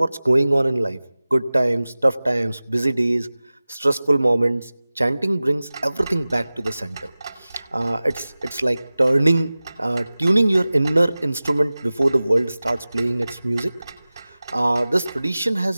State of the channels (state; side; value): inverted; both; correlation -0.97